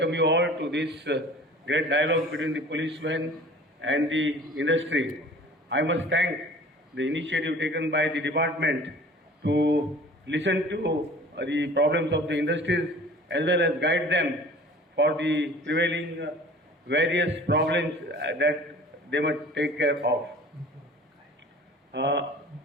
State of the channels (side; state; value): both; normal; correlation 0.46